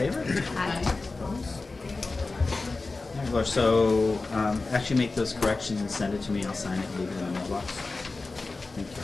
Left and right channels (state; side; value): quieter; right; 3.6 dB